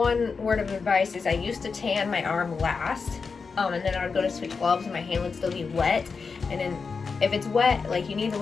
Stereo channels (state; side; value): quieter; right; 5.0 dB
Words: word of advice is I used to tan my arm last, and then I would go to switch gloves and my hand would still be wet. And then if it's wet, like you need to